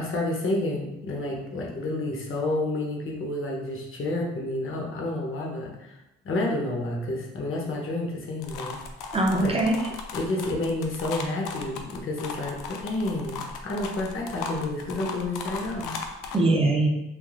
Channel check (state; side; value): normal; both; correlation 0.57